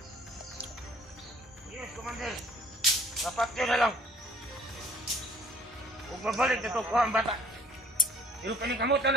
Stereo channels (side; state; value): both; normal; correlation 0.56